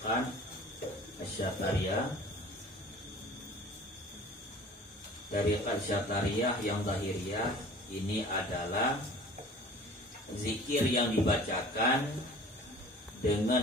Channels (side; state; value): both; normal; correlation 0.45